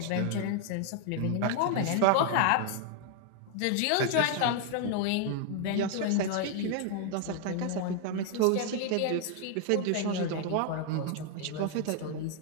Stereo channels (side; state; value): both; different; correlation 0.00